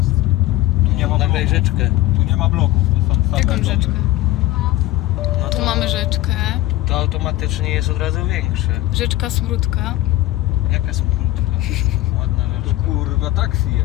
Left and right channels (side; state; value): right; quieter; 16.1 dB